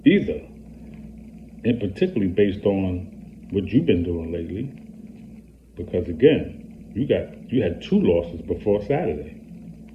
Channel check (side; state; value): both; identical; correlation 1.00